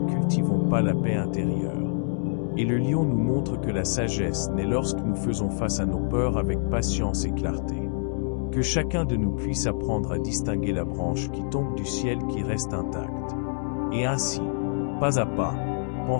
cultivons pas la paix intérieure. Et le lion nous montre que la sagesse naît lorsque nous faisons face à nos peurs avec patience et clarté. Que chacun de nous puisse apprendre à distinguer la branche qui tombe du ciel qui reste intacte. Et ainsi, pas à pas,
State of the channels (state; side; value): silent; right; digital silence